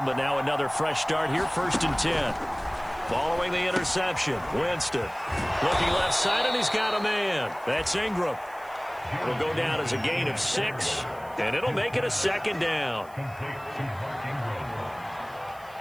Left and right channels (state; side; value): noise; right; hiss, 25 dB below the sound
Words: but now another fresh start here, 1st and 10. Following the interception, Winston looking left side, and he's got a man. That's Ingram. It'll go down as a gain of 6, and it'll make it a 2nd down.